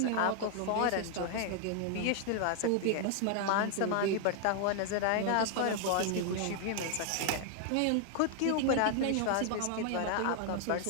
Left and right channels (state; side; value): different; both; correlation 0.00